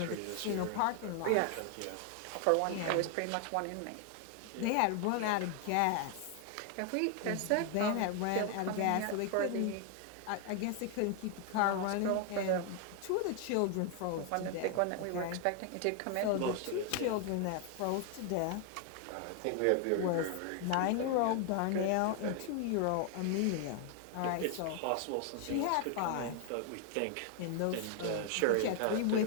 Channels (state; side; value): different; both; correlation 0.00